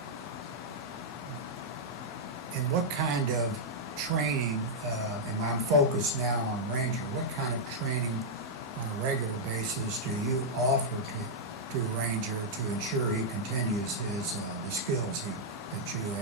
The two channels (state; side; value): normal; both; correlation -0.06